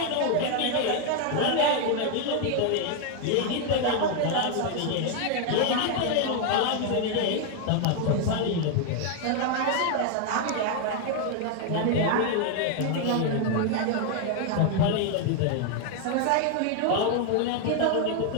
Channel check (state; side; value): different; both; correlation 0.01